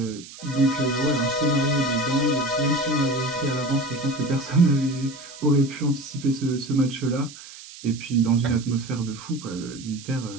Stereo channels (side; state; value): right; noise; hiss, 16 dB below the sound